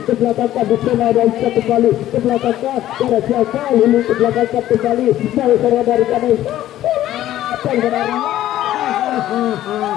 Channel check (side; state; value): right; quieter; 13.4 dB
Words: ke belakang di sana dan bisa kembali ke belakang ada siapa Lili ke belakang kembali dari sana dari Nesa